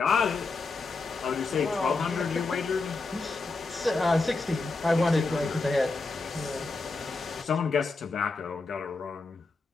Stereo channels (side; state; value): right; quieter; 3.8 dB